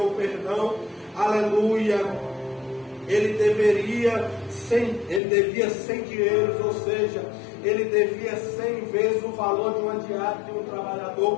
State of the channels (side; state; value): right; drops out; at 5.2 s